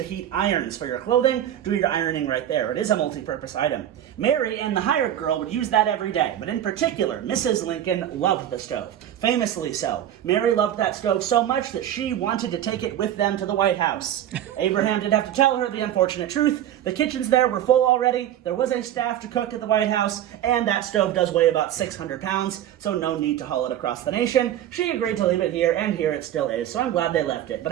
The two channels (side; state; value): left; quieter; 11.3 dB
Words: heat irons for your clothing. Do your ironing right there. It is a multi-purpose item. Mary and the hired girl would use that every day, but in particular, Mrs. Lincoln loved the stove. Famously so. Mary loved that stove so much that she wanted to take it with them to the White House. Abraham did have to tell her the unfortunate truth. The kitchens there were full already. There was a staff to cook at the White House, and that stove does weigh about 600 pounds, so no need to haul it across the nation. She agreed to leave it here, and here it still is, so I'm glad they left it.